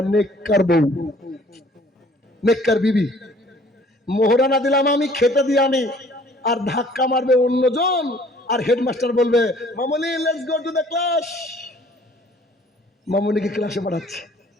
নেককার বউ, নেককার বিবি। মোহরানা দিলাম আমি, খেতে দিয়ে আমি, আর ধাক্কা মারবে অন্যজন, আর হেডমাস্টার বলবে Mamuni let's go to the class. মামুনিকে ক্লাসে পাঠাচ্ছে।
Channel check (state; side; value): normal; both; correlation 0.55